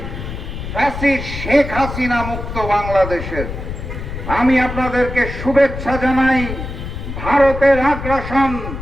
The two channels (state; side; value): noise; left; rumble, 7 dB below the sound